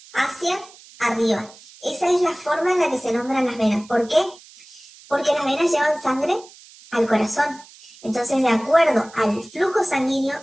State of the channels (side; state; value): right; noise; hiss, 22 dB below the sound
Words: hacia arriba. Esa es la forma en la que se nombran las venas. ¿Por qué? Porque las venas llevan sangre al corazón. Entonces, de acuerdo al flujo